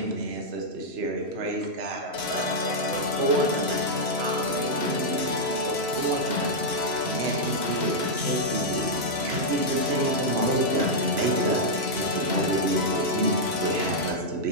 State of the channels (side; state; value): left; late; 3.0 ms